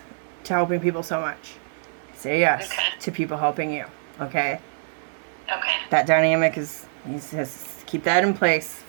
to helping people so much. Say yes to people helping you. Okay? Okay. That dynamic is, you just keep that in place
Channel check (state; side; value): silent; left; 62 dB below the other